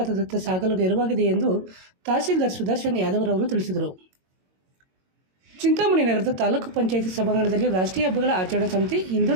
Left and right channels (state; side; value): late; left; 22 ms